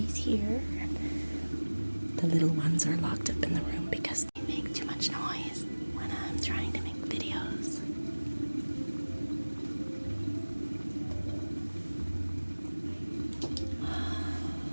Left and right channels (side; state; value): both; inverted; correlation -1.00